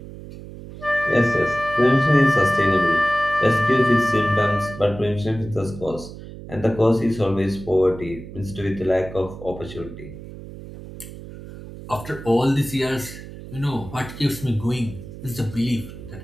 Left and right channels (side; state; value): right; noise; hum, 14 dB below the sound